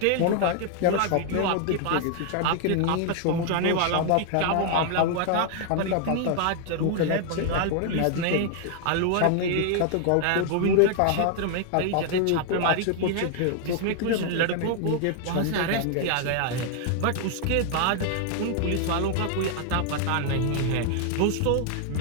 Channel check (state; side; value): different; both; correlation 0.00